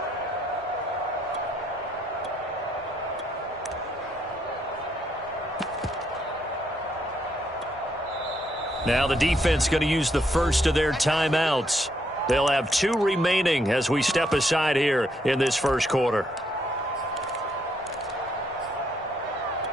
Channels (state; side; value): normal; both; correlation 0.74